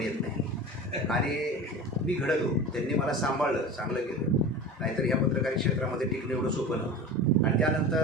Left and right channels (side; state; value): both; normal; correlation 0.32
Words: येत नाही आणि मी घडलो. त्यांनी मला सांभाळलं, चांगलं केलं. नाहीतर ह्या पत्रकारी क्षेत्रामध्ये टिकणं एवढं सोपं नव्हतं. आणि